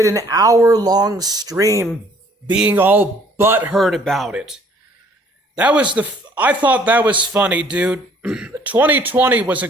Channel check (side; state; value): both; normal; correlation 0.59